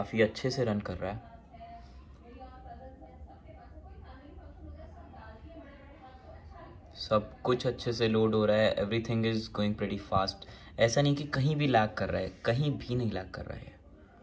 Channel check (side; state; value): both; identical; correlation 1.00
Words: अच्छे से रन कर रहा है. सब कुछ अच्छे से लोड हो रहा है, everything is going pretty fast. ऐसा नहीं कि कहीं भी लैग कर रहा है, कहीं भी नहीं लैग कर रहा है.